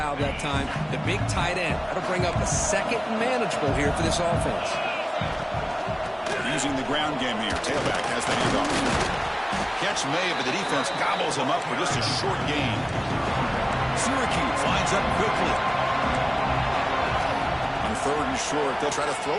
that time, the big tight end. That'll bring up a second and manageable here for this offense. Using the ground game here. Tailback has the handoff. Catch made, but the defense gobbles him up for just a short gain. Syracuse lines up quickly. On third and short, they'll try to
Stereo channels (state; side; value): identical; both; correlation 1.00